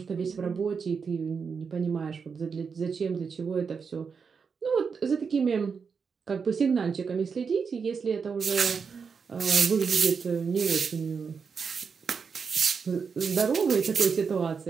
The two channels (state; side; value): quieter; left; 5.8 dB